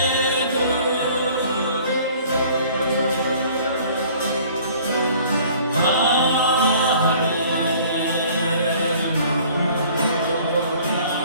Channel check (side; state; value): both; inverted; correlation -0.52